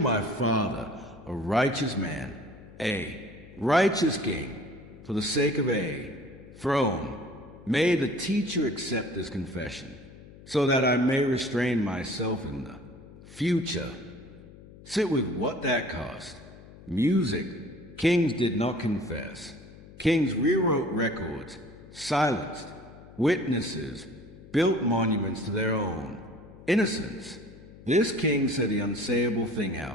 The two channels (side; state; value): left; noise; hum, 19 dB below the sound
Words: my father, a righteous man, a righteous king, for the sake of a throne. May the teacher accept this confession, so that I may restrain myself in the future. Sit with what that cost. Music. Kings did not confess. Kings rewrote records, silenced witnesses, built monuments to their own innocence. This king said the unsayable thing